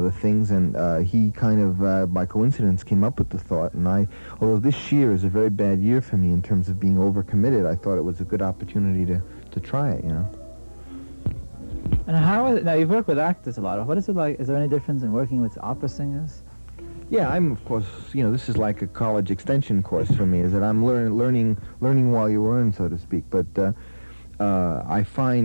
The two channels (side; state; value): both; inverted; correlation -1.00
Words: things, and he kind of, by coincidence, came up with the thought, and although this year is a very bad year for me in terms of being overcommitted, I thought it was a good opportunity to try it, And how is it, now you've worked with actors a lot. What is it like? Is there any difference in working with opera singers? Yeah, I'm, of course, this is like a college extension course for me, is that I'm learning while you learn, so to speak, but I